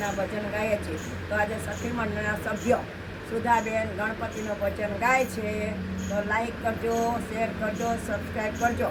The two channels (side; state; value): both; identical; correlation 1.00